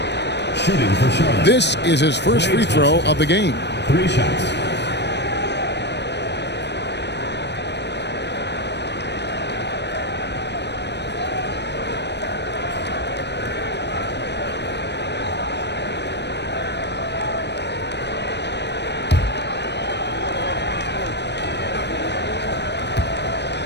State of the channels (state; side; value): late; right; 0.50 ms